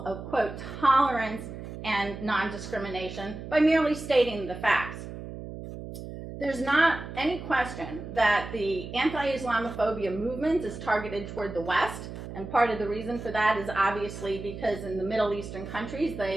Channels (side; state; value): right; noise; hum, 10 dB below the sound